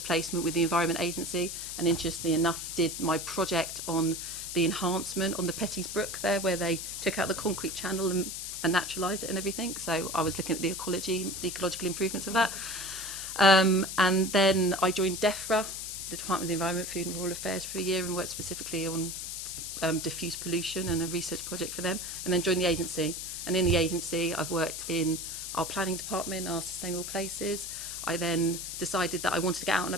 placement with the Environment Agency, and interestingly enough did my project on the enhancement on the Petties Brook there, where they took out the concrete channel and naturalised it and everything. So I was looking at the ecological improvements of that. And then I joined DEFRA, the Department of the Environment, Food and Rural Affairs, for a year and worked specifically on diffuse pollution and a research project for them, and then joined the agency. And in the agency, I've worked in our planning department, our sustainable places. I then decided that I wanted to get out and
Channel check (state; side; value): noise; left; hiss, 6 dB below the sound